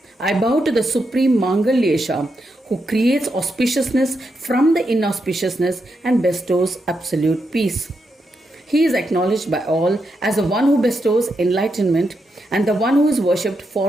I bow to the Supreme Mangalyesha who creates auspiciousness from the inauspiciousness and bestows absolute peace. He is acknowledged by all as the one who bestows enlightenment and the one who is worshipped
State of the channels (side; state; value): both; normal; correlation 0.84